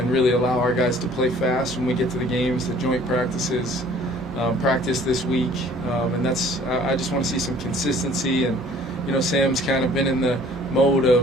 really allow our guys to play fast when we get to the games, the joint practices, practice this week, and I just want to see some consistency. And Sam's kind of been in the mode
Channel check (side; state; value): both; normal; correlation 0.54